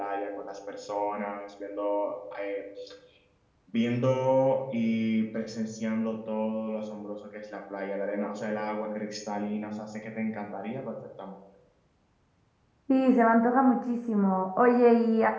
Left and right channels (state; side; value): identical; both; correlation 1.00